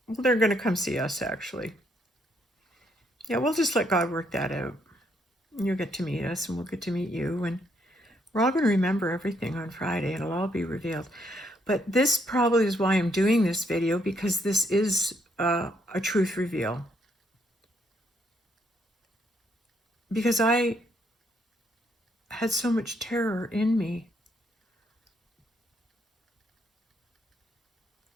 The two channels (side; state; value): both; normal; correlation 0.72